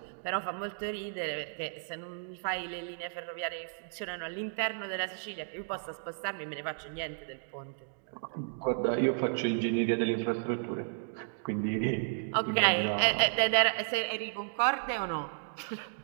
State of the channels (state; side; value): silent; left; digital silence